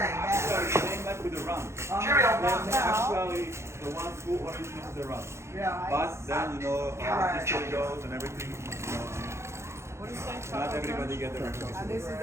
Same like with the rum. Cheerio. They're actually the ones who originated the rum. Yeah. But then, you know, how history goes and everything, you know, not everybody get the recognition. And this is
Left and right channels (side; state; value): left; late; 0.13 ms